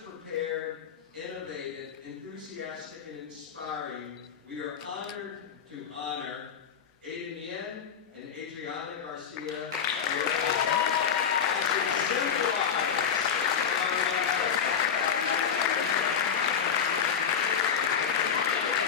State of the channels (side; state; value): right; quieter; 7.6 dB